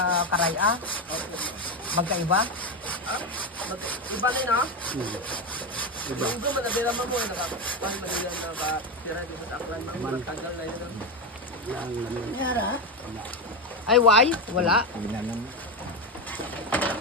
Karaya? Magkaiba? Iba rin ha? Yung doon, manabira mo mo. Nakapang manilan na ba? Tira dito sa aklan. Matagal na yun. Yara? Ay, why? Wala. Yun na,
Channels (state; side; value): normal; both; correlation 0.13